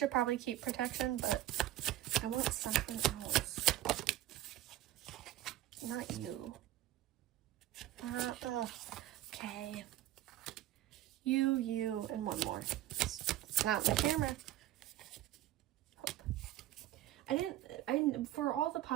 probably keep protection, but I want something else. Not you. Okay. You, and one more. It's not the camera. Hope. I didn't, for all the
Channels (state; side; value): quieter; left; 14.0 dB